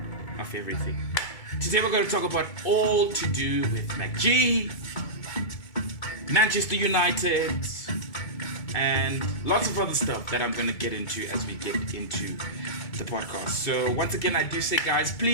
of everything. Today we're going to talk about all to do with ℂ𝕒𝕟𝕠𝕟𝕚, Manchester United, and lots of other stuff that I'm going to get into as we get into the podcast. So once again, I do say, guys,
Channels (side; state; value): right; late; 2.3 ms